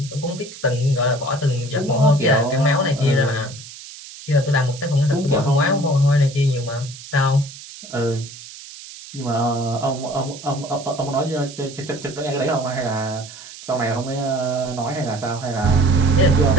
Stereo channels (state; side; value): noise; right; hiss, 15 dB below the sound